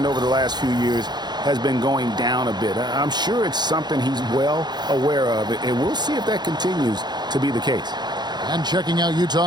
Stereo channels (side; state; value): left; late; 0.21 ms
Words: over the last few years has been going down a bit. I'm sure it's something he's well aware of, and we'll see if that continues to be the case. And checking out